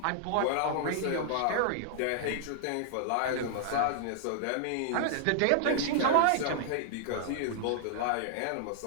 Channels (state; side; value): different; both; correlation -0.01